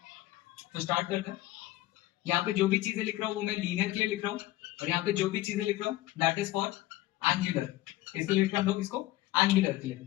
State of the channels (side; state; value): right; quieter; 16.5 dB